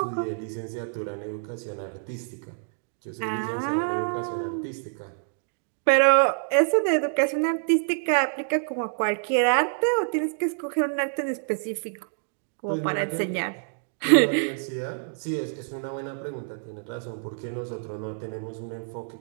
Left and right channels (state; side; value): silent; left; digital silence